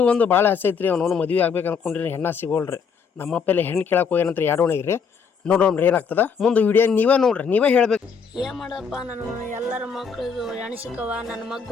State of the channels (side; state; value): right; quieter; 6.1 dB